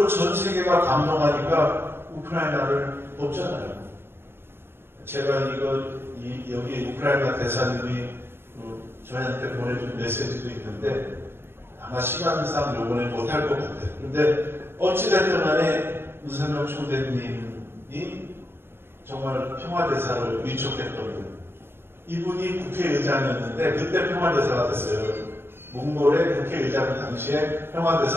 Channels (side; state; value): left; late; 0.11 ms